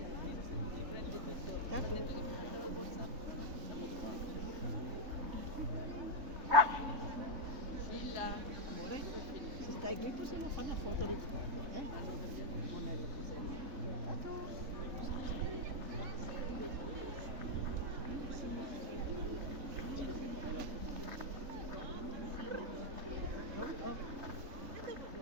Ecco. Amore, se stai qui possiamo fare una foto di Monello Piselli. Ciao.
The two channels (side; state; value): left; late; 3.5 ms